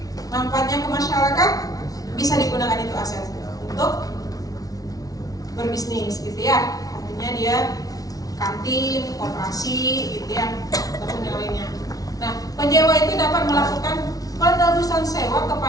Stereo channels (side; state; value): right; late; 0.18 ms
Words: Manfaatnya ke masyarakat bisa digunakan itu aset untuk berbisnis gitu ya. Artinya dia kantin, koperasi gitu ya, ataupun yang lainnya. Nah, penyewa itu dapat melakukan penerusan sewa